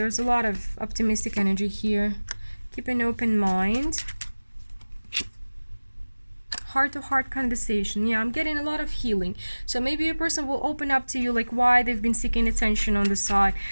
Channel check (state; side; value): inverted; both; correlation -1.00